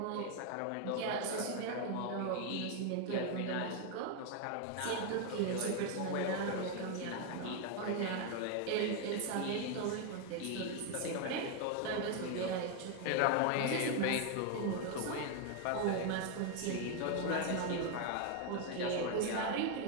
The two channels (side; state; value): both; different; correlation 0.01